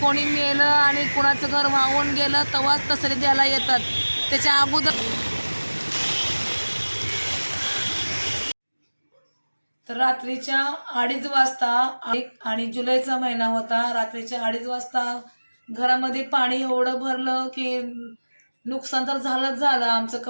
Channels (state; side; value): inverted; both; correlation -1.00